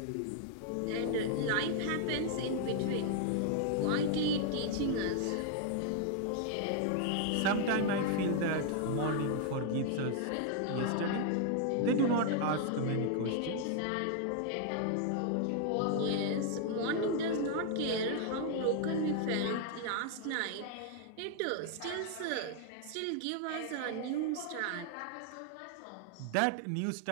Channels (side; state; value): both; different; correlation 0.00